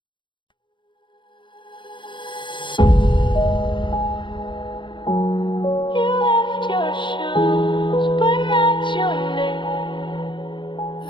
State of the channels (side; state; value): right; late; 0.23 ms